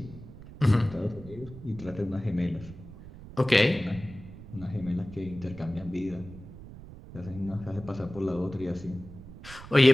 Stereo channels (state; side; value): noise; right; rumble, 16 dB below the sound